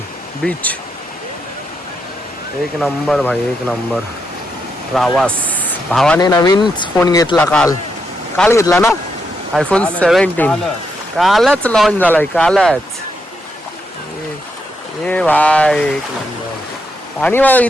बीच. एक नंबर भाई एक नंबर. प्रवास. भावाने नवीन फोन घेतला काल घेतला ना iPhone 17. कालच लॉन्च झालाय कालच. ए भाई एक नंबर. पाणी बघा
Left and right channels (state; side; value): normal; both; correlation 0.81